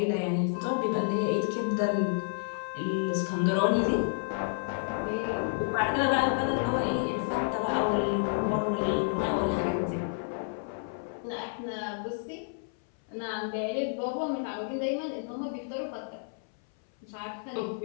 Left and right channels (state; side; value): silent; right; 58 dB below the other